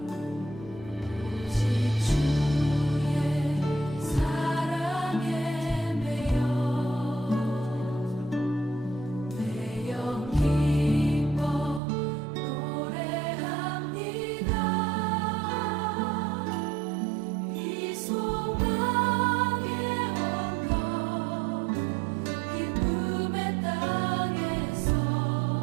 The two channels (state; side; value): drops out; left; at 11.8 s